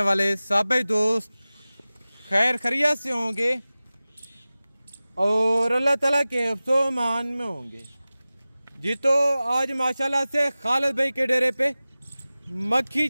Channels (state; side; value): inverted; both; correlation -0.97